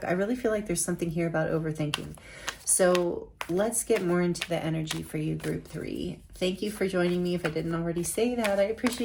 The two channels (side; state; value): both; identical; correlation 1.00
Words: I really feel like there's something here about overthinking. So let's get more into the energy for you, group 3. Thank you for joining me. If I didn't already say that, I